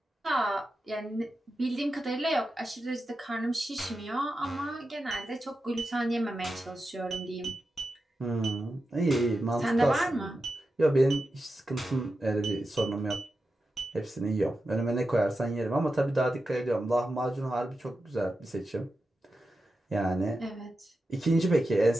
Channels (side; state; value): both; normal; correlation 0.90